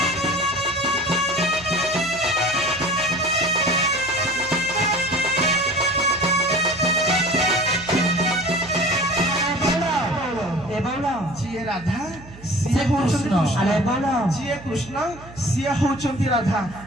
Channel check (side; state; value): right; noise; hum, 19 dB below the sound